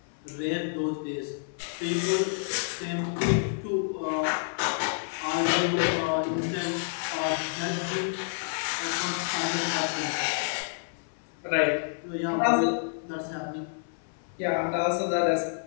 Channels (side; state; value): right; silent; 59 dB below the other